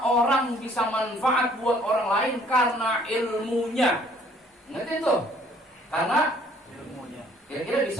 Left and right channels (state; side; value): normal; both; correlation 0.59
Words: orang bisa manfaat buat orang lain karena ilmunya. Ngerti itu? Karena ilmunya. Kira-kira